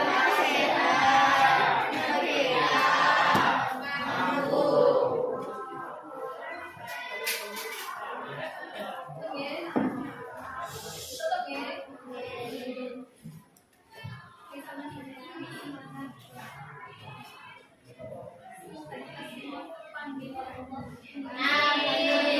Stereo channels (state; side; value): identical; both; correlation 1.00